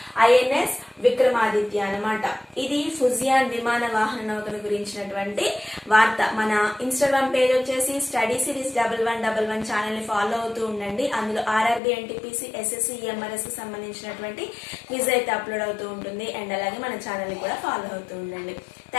ఐఎన్ఎస్ విక్రమాదిత్య అనమాట. ఇది ఫుజియాన్ విమాన వాహన నౌకను గురించినటువంటి వార్త. మన ఇన్స్టాగ్రామ్ పేజ్ వచ్చేసి స్టడీ సిరీస్ 1111 ఛానల్ ని ఫాలో అవుతూ ఉండండి. అందులో ఆర్ఆర్బి, ఎన్టీపీసీ, ఎస్ఎస్సి, ఎంఆర్ఎస్ కి సంబంధించినటువంటి క్విజ్ అయితే అప్లోడ్ అవుతూ ఉంటుంది. అండ్ అలాగే మన ఛానల్ ని కూడా ఫాలో అవుతూ ఉండండి.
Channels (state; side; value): drops out; right; at 11.8 s